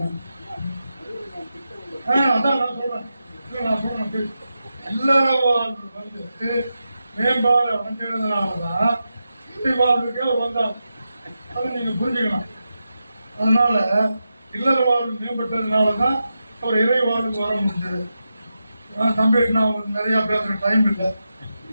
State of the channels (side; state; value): both; inverted; correlation -0.89